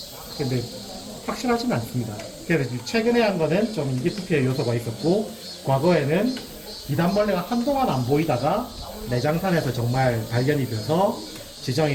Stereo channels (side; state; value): both; identical; correlation 1.00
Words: 근데 확실하지는 않습니다. 그래서 최근에 한 거는 좀 인기 투표의 요소가 있었고 과거에는 비단벌레가 한동안 안 보이다가 내장산에서 정말 발견이 돼서